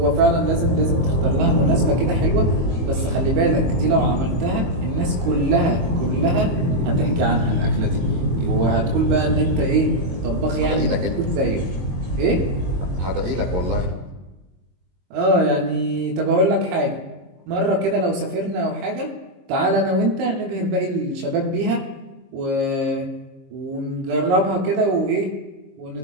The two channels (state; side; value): late; left; 22 ms